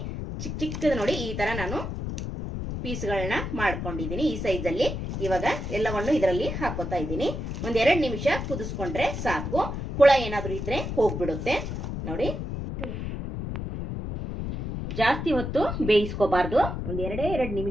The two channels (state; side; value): noise; left; rumble, 5 dB below the sound